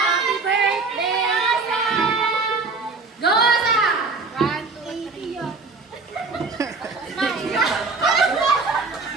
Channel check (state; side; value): quieter; left; 4.1 dB